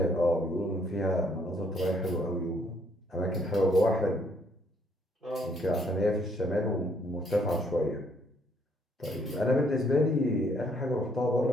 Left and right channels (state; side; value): normal; both; correlation 0.67